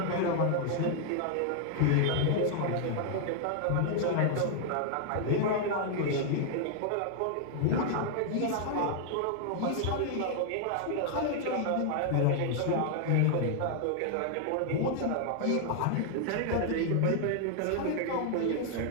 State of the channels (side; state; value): both; different; correlation 0.00